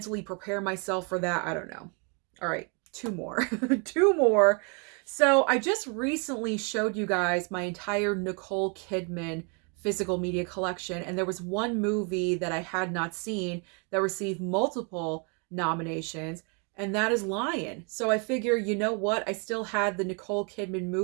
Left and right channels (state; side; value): quieter; left; 35.8 dB